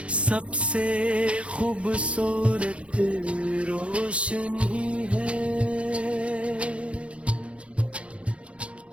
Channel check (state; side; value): late; left; 0.061 ms